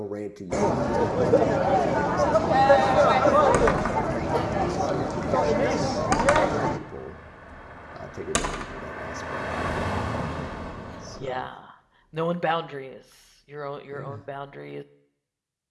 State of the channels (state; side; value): identical; both; correlation 1.00